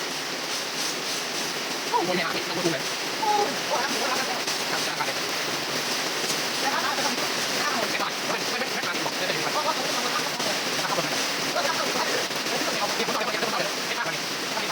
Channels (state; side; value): identical; both; correlation 1.00